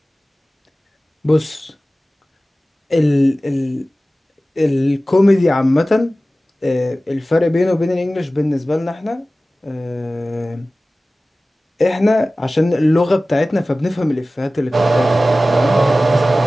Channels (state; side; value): normal; both; correlation 0.96